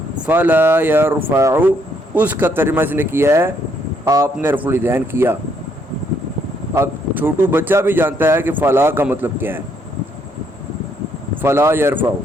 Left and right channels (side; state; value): both; normal; correlation 0.71